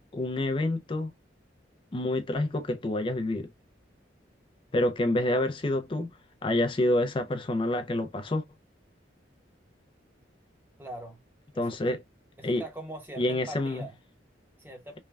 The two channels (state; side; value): normal; both; correlation 0.69